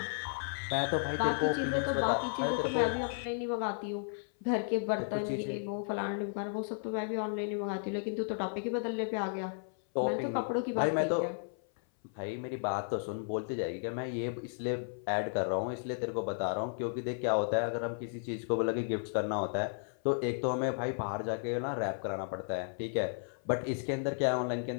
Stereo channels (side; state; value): right; silent; 55 dB below the other